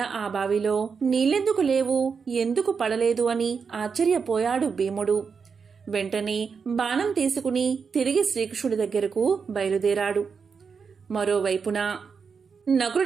ఆ బావిలో నీళ్ళెందుకు లేవు, ఎందుకు పడలేదు అని ఆశ్చర్యపోయాడు భీముడు. వెంటనే బాణం తీసుకుని తిరిగి శ్రీకృష్ణుడి దగ్గరకు బయలుదేరాడు. మరోవైపున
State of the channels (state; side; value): quieter; left; 5.7 dB